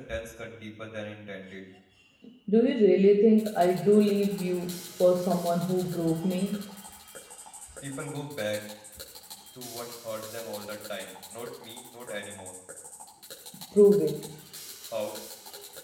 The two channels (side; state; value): both; identical; correlation 1.00